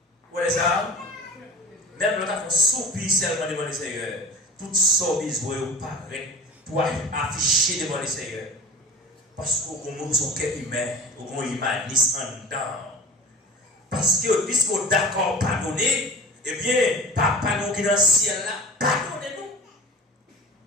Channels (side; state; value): both; normal; correlation 0.37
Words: Vous voyez ça? Même quand on soupir seulement devant le Seigneur, tout ça besoin de paraître pour afficher devant le Seigneur. Parce qu'on a son cœur humain, on a humaniste en dedans. Parce que puisqu'on est d'accord pardonner, eh bien, papa nous qui est dans le ciel là, pardonnez-nous.